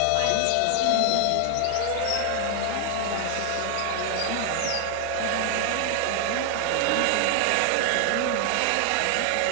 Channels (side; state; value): both; different; correlation 0.00